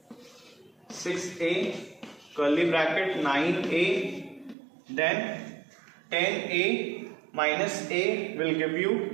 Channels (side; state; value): left; drops out; at 4.5 s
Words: 6a, curly bracket, 9a, then 10a minus a will give